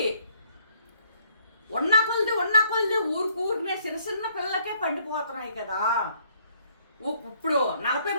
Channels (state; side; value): inverted; both; correlation -0.66